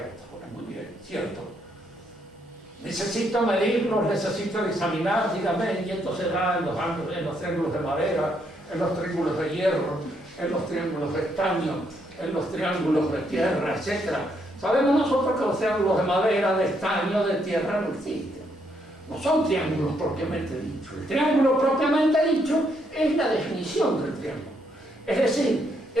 muy bien, cierto. Necesito medirlos, necesito examinar, dígame, y esto se da en los triángulos de madera, en los triángulos de hierro, en los triángulos de estaño, en los triángulos de tierra, etc. Sabemos nosotros que los triángulos de madera, de estaño, de tierra no existen. No son triángulos propiamente dichos. El triángulo propiamente dicho es la definición del triángulo. Es decir,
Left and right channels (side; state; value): both; normal; correlation 0.74